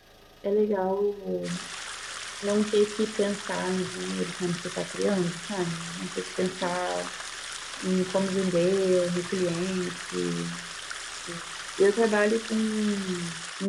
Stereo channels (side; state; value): both; identical; correlation 1.00